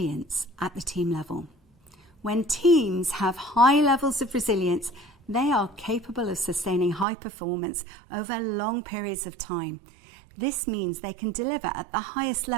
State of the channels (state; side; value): drops out; left; at 7.1 s